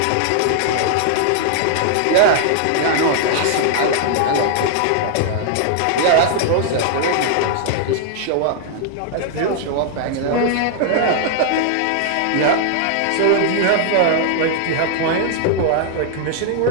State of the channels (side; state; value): both; different; correlation -0.01